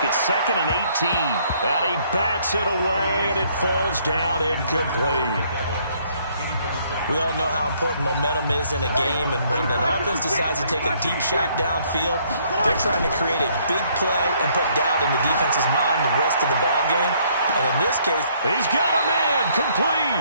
It's 2nd and 18. And he bats it away, and it falls down incomplete. We all know how important momentum is in a game, and when an offense decides to take a deep shot downfield, they're trying to create a big play and put doubt in the defense's mind the rest of the ball game. And in this case, he's got a man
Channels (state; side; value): inverted; both; correlation -0.66